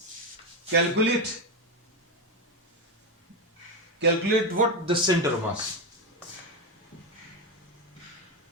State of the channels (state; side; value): normal; both; correlation 0.11